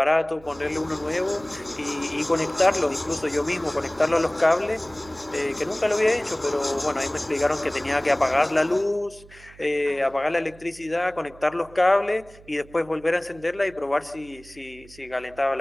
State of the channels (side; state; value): right; noise; hum, 22 dB below the sound